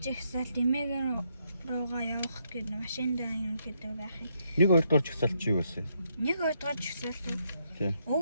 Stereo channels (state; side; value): inverted; both; correlation -0.76